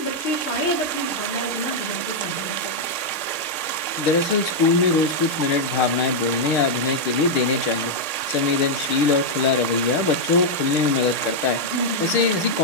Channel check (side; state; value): right; late; 6.6 ms